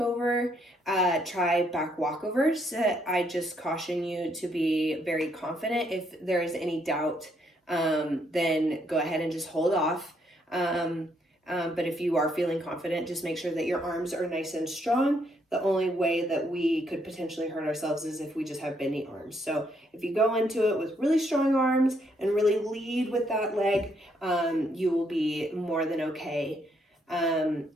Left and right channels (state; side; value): normal; both; correlation 0.73